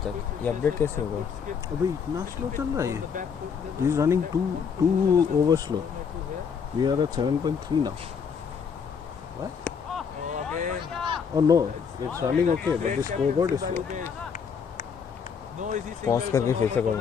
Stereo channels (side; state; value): right; quieter; 6.5 dB